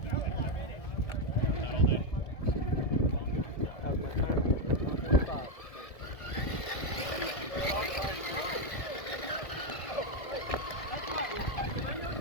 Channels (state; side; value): late; right; 1.7 ms